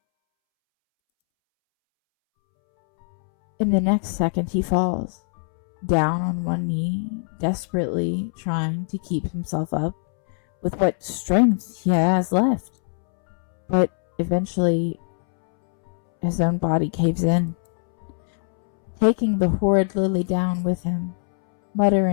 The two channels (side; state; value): right; silent; 64 dB below the other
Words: in the next second he falls, down on one knee, desperately trying to keep himself up with what strength he has left. But eventually, his own body caves in, taking the horrid Lily down with him,